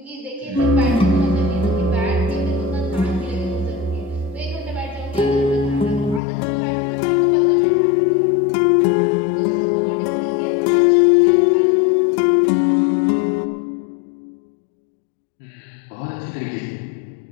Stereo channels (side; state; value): right; drops out; at 6.2 s